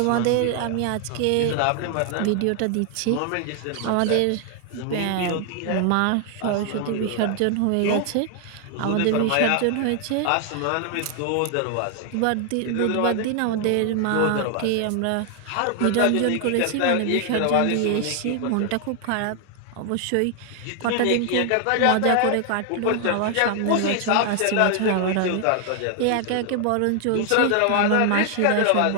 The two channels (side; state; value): both; different; correlation 0.00